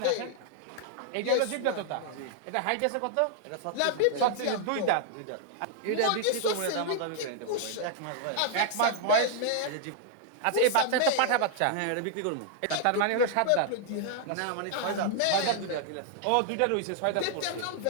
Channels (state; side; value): different; both; correlation -0.01